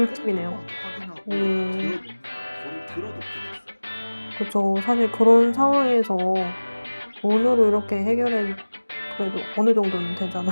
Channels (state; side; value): inverted; both; correlation -1.00